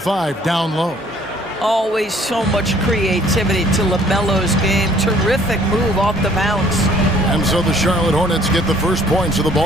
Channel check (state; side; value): normal; both; correlation 0.58